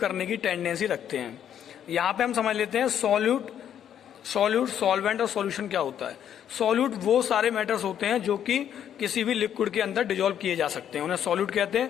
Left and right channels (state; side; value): quieter; right; 9.6 dB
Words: की टेंडेंसी रखते हैं. यहाँ पे हम समझ लेते हैं सॉल्वेंट और सॉल्यूशन क्या होता है. सॉल्यूट वो सारे मैटर्स होते हैं जो कि किसी भी लिक्विड के अंदर डिजोल्व किए जा सकते हैं, उन्हें सॉल्यूट कहते